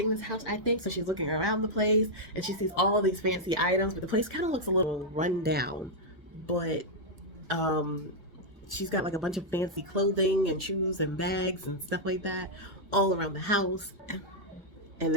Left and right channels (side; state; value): both; normal; correlation -0.04